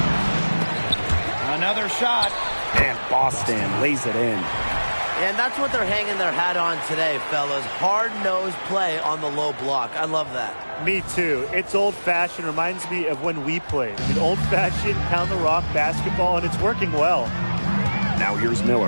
Another shot. And Boston lays it in. And that's what they're hanging their hat on today, fellas. Hard-nosed play on the low block. I love that. Me too. It's old-fashioned. Reminds me of when we played. I mean, old-fashioned, pound-the-rock basketball, and it's working well. Now here's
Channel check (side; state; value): both; inverted; correlation -1.00